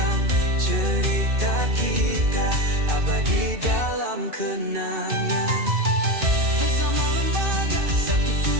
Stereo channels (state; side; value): late; left; 2.4 ms